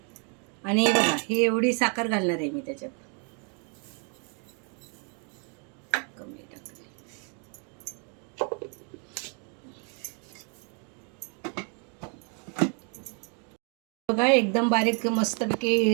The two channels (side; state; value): left; quieter; 38.8 dB